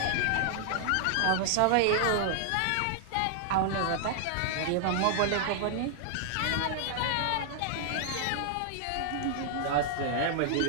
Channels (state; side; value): different; both; correlation 0.00